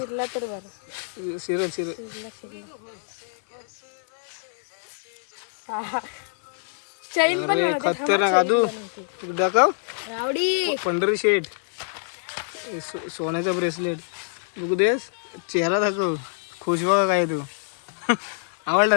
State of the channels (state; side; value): silent; right; digital silence